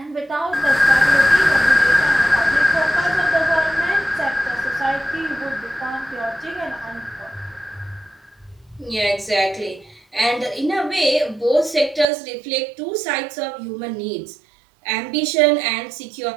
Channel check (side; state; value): left; drops out; at 12.1 s